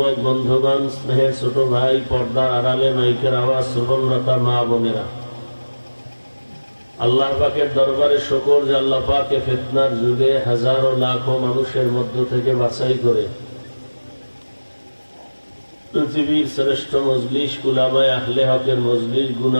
বন্ধুগণ, স্নেহের ছোট ভাই, পর্দার আড়ালে মাইকের আওয়াজ শ্রবণরতা মা বোনেরা, আল্লাহ পাকের দরবারে শুকর যে আল্লাহ পাকে ফিতনার যুগে হাজারো লাখো মানুষের মধ্য থেকে বাছাই করে পৃথিবীর শ্রেষ্ঠ মজলিস, উলামায়ে আহলে হকের মজলিস,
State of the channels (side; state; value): both; inverted; correlation -1.00